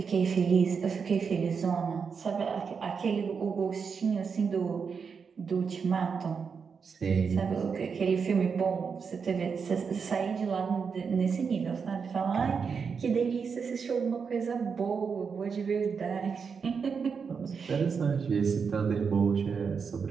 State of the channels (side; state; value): left; quieter; 5.9 dB